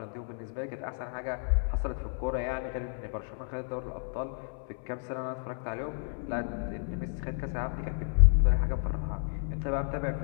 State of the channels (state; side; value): silent; right; 57 dB below the other